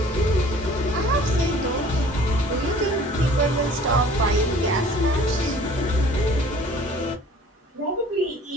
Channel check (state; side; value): normal; both; correlation 0.50